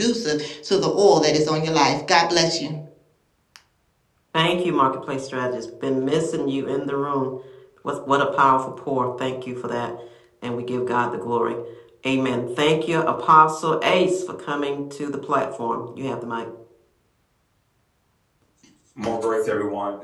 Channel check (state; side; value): identical; both; correlation 1.00